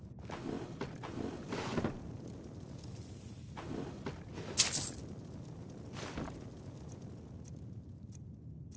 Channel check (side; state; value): both; identical; correlation 1.00